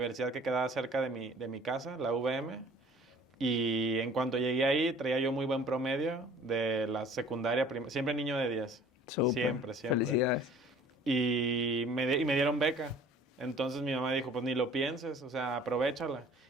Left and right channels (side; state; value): both; normal; correlation 0.50